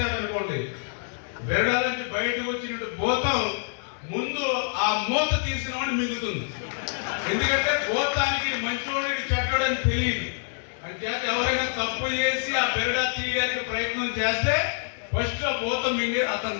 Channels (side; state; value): right; silent; 61 dB below the other